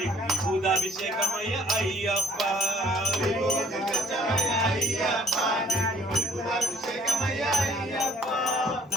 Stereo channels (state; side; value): normal; both; correlation 0.57